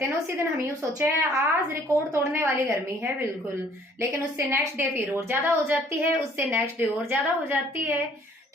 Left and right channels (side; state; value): both; normal; correlation 0.58